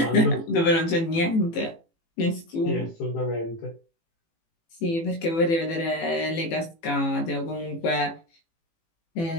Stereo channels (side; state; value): right; late; 18 ms